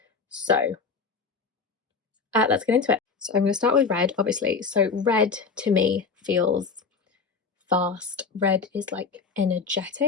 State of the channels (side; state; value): right; quieter; 5.0 dB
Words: So let's get into it. So I'm going to start with red, obviously. So red to me feels fast. Red is like